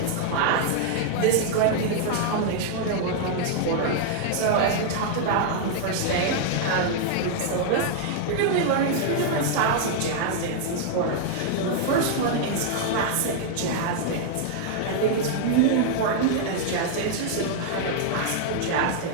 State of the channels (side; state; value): both; different; correlation -0.01